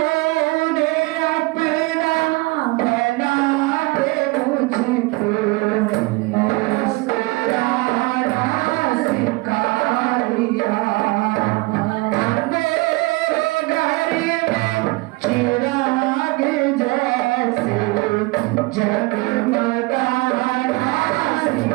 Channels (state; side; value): quieter; left; 23.9 dB